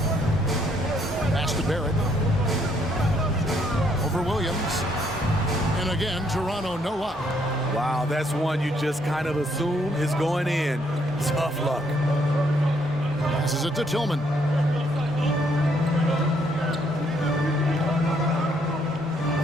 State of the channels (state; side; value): normal; both; correlation 0.70